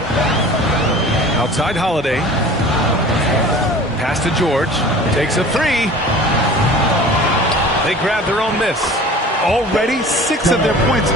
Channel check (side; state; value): both; normal; correlation 0.42